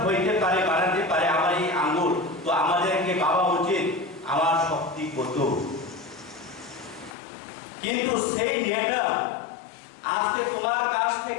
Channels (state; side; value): drops out; right; at 7.2 s